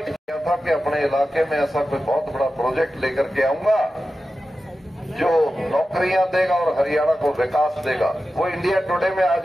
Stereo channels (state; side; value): normal; both; correlation 0.93